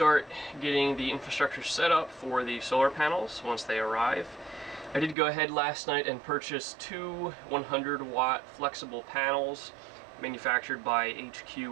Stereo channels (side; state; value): left; drops out; at 5.2 s